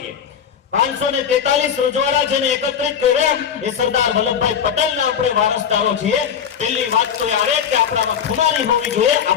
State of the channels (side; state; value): right; quieter; 7.9 dB